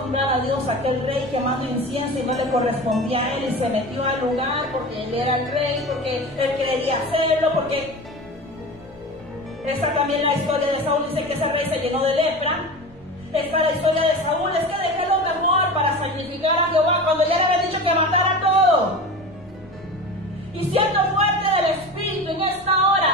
honrar a Dios, aquel rey quemando incienso y no le correspondía a él y se metió al lugar porque él era el rey, porque él quería hacerlo, porque esta también la historia de Saúl dice que ese rey se llenó de lepra? Esta es la historia de Saúl, es que dejé lo mejor cuando ya le había dicho que matara todo. Y siendo fuerte del Espíritu en esta hora,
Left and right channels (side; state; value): both; normal; correlation 0.31